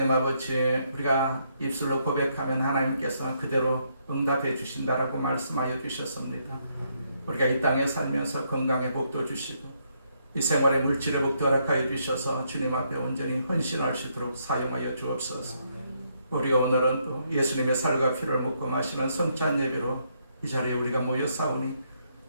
아버지, 우리가 입술로 고백하면 하나님께서 그대로 응답해 주신다라고 말씀하여 주셨습니다. 우리가 이 땅에 살면서 건강의 복도 주시고 이 생활의 물질의 복도 허락하여 주셔서 주님 앞에 온전히 헌신할 수 있도록 사용하여 주옵소서. 우리가 오늘은 또 예수님의 살과 피를 묻고 마시는 성찬 예배로 이 자리에 우리가 모여 싸우니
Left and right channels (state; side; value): inverted; both; correlation -0.75